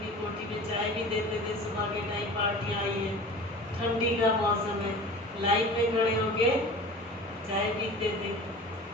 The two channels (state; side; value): normal; both; correlation 0.38